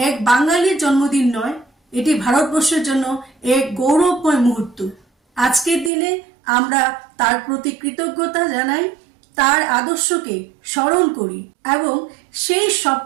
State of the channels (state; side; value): drops out; left; at 5.9 s